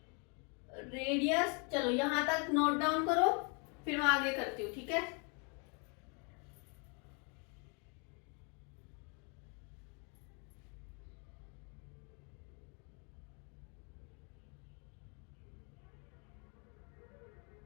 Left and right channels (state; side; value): quieter; right; 35.6 dB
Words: रेडियस, चलो यहां तक नोट डाउन करो, फिर मैं आगे करती हूँ। ठीक है,